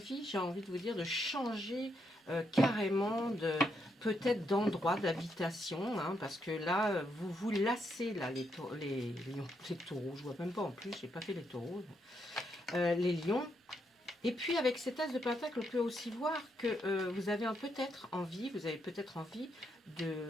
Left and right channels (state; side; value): normal; both; correlation 0.78